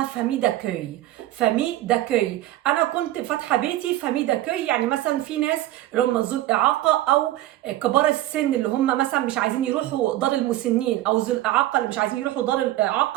فامي داكوي. فامي داكوي، انا كنت فاتحه بيتي فامي داكوي. يعني مثلا في ناس اللي هم ذو الاعاقه او كبار السن اللي هم مثلا مش عايزين يروحوا دار المسنين، او ذو الاعاقه اللي مش عايزين يروحوا دار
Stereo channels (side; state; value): left; quieter; 15.0 dB